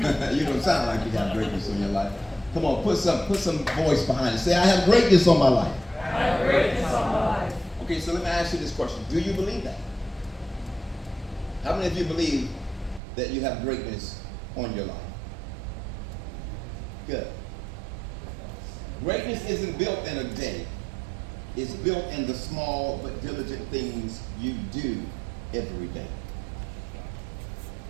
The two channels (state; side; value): drops out; left; at 13.0 s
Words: don't sound like you got greatness on your life. Come on, put some voice behind it. Say, I have greatness on my life. I have greatness on my life. Okay, so let me ask you this question. Do you believe that? How many of you believe that you have greatness on your life? Good. Greatness isn't built in a day. It's built in the small but diligent things you do every day.